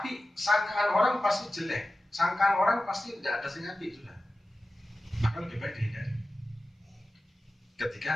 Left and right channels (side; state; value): both; normal; correlation 0.94